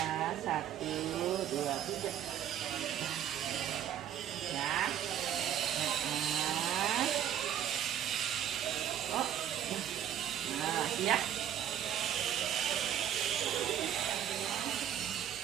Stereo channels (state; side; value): quieter; left; 10.3 dB